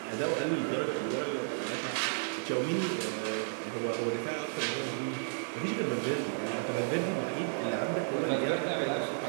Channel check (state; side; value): silent; left; digital silence